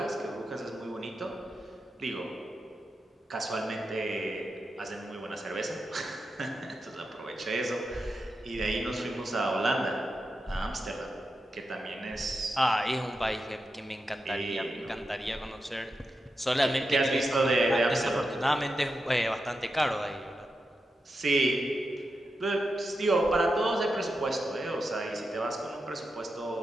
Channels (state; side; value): normal; both; correlation 0.88